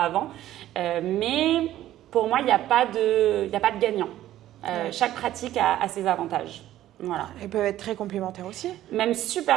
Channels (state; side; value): quieter; left; 13.4 dB